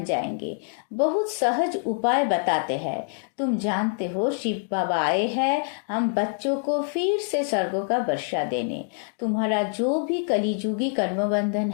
जाएंगे। बहुत सहज उपाय बताते हैं। तुम जानते हो शिव बाबा आए हैं हम बच्चों को फिर से स्वर्गों का वर्षा देने। तुम्हारा जो भी कलिजुगी कर्मबंधन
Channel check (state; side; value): silent; right; 61 dB below the other